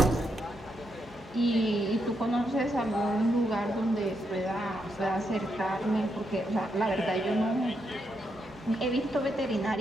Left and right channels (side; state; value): both; normal; correlation 0.81